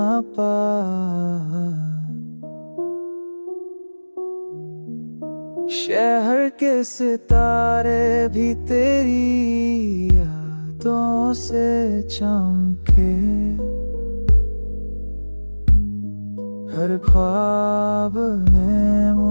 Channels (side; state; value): both; inverted; correlation -1.00